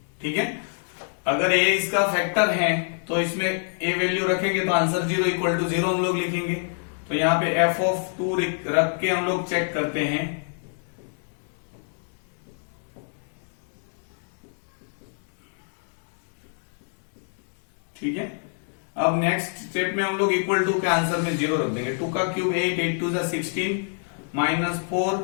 ठीक है, अगर a इसका फैक्टर है तो इसमें a वैल्यू रखेंगे तो आंसर 0 इक्वल टू 0 हम लोग लिखेंगे। तो यहाँ पे f ऑफ 2 रख के हम लोग चेक करते हैं। ठीक है, अब नेक्स्ट स्टेप में हम लोग इक्वल टू के आंसर में 0 रख देंगे। 2 का cube 8, 8 2 16, -4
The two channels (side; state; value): right; silent; digital silence